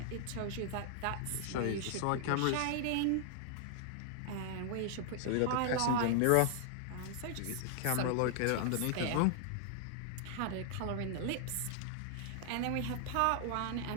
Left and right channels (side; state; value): both; different; correlation 0.00